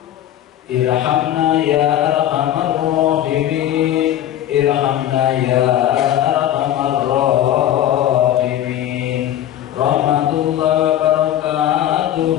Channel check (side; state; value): right; quieter; 11.8 dB